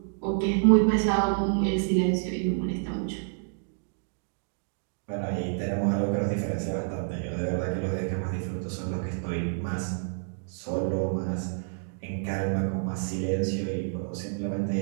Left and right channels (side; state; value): left; silent; digital silence